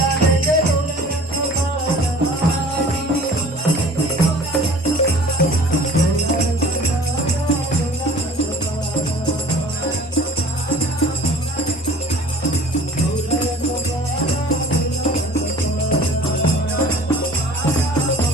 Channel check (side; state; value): both; normal; correlation 0.47